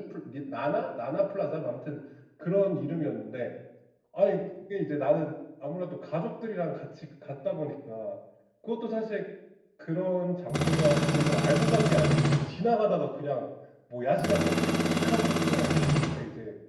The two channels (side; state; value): both; identical; correlation 1.00